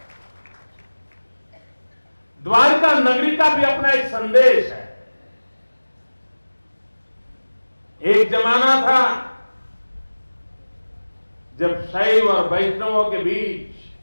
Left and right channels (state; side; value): inverted; both; correlation -1.00